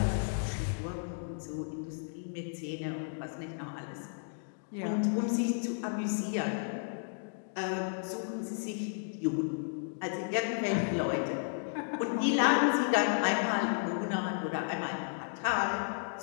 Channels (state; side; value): silent; right; digital silence